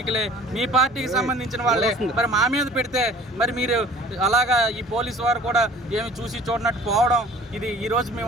మీ పార్టీకి సంబంధించిన వాళ్ళే మరి మా మీద పెడితే మరి మీరు అలాగా ఈ పోలీసు వారు కూడా ఏమి చూసి చూడనట్టు పోవడం, ఇది ఈరోజు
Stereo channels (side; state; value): both; normal; correlation 0.49